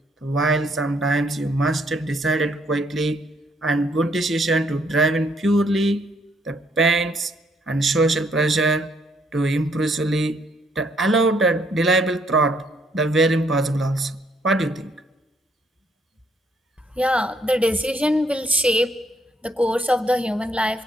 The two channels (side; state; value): both; normal; correlation 0.69